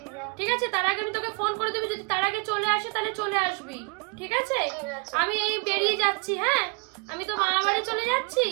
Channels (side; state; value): left; quieter; 32.0 dB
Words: ঠিক আছে, তার আগে আমি তোকে ফোন করে দেবো, যদি তার আগে চলে আসে তাহলে চলে আসবি। ঠিক আছে, আমি এই বেরিয়ে যাচ্ছি। হ্যাঁ, আমি তো মামা বাড়ি চলে যাচ্ছি।